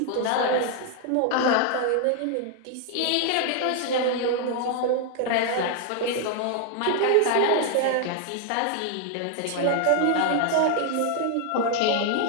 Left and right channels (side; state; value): both; different; correlation 0.00